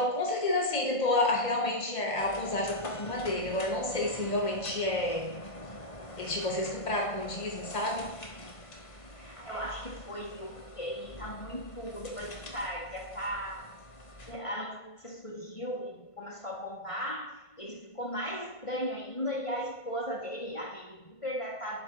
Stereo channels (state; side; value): late; right; 1.5 ms